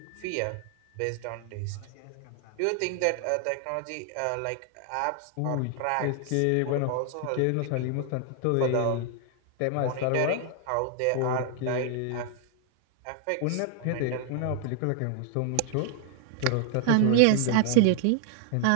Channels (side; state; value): both; different; correlation 0.00